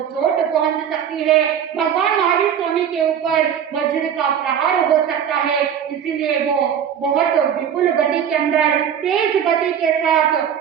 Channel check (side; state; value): left; quieter; 8.6 dB